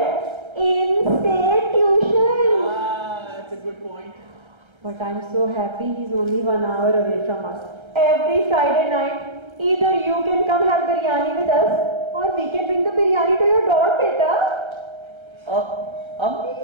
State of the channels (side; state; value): left; late; 1.3 ms